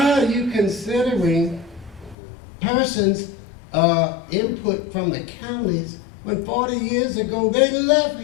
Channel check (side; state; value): right; drops out; at 2.1 s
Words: are you considering persons' input from the counties when 40 years ago they left